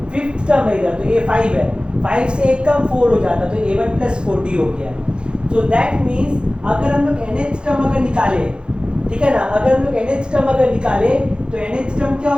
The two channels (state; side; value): late; left; 0.052 ms